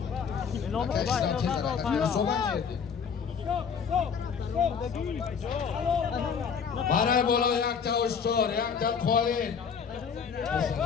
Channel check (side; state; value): right; quieter; 6.5 dB